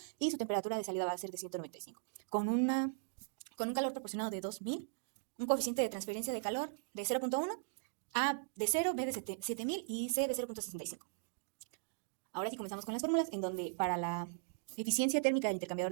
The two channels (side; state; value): left; silent; digital silence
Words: y su temperatura de salida va a ser de 195. Con un calor proporcionado de 2000, un coeficiente de transferencia de calor de 0.1, A de 0, B de 7000 y C de 0.65. Ahora sí comenzamos con las fórmulas, en donde para la eficiencia térmica del intercambiador